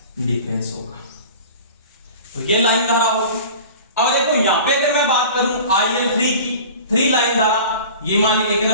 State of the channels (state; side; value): inverted; both; correlation -0.40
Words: डिफरेंस होगा। तो ये लाइन धारा होगी। अब देखो यहां पे अगर मैं बात करूं IL3 की, 3 लाइन धारा, ये मान ली 1